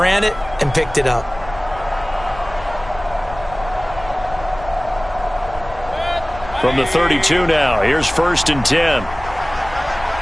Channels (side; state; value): left; noise; rumble, 16 dB below the sound